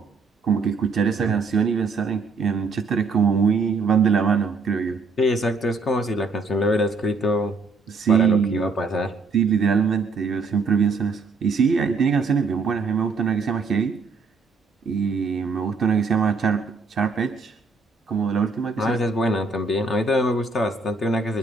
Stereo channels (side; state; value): left; quieter; 4.0 dB